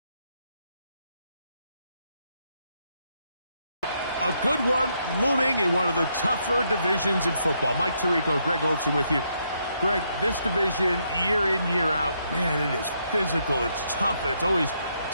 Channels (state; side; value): inverted; both; correlation -0.76